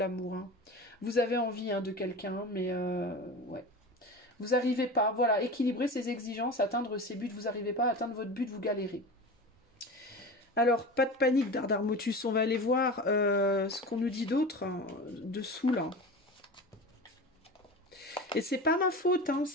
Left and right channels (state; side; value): normal; both; correlation 0.31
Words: Hein. Vous avez envie, hein, de quelqu'un, mais ouais. Vous n'arrivez pas, voilà, équilibrer ses exigences, atteindre ses buts, vous n'arrivez pas à atteindre votre but, vous galérez. Alors, pas de panique, Dardarmotus, on va aller voir ce qu'on nous dit d'autre, hein, dessous, là. Et c'est pas ma faute, hein,